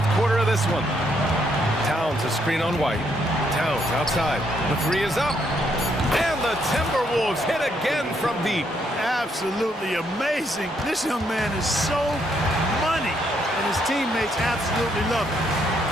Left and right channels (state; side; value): normal; both; correlation 0.73